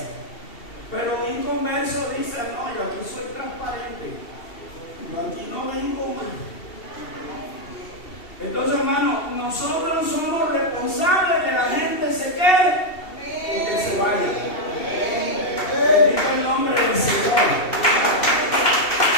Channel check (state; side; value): late; right; 2.7 ms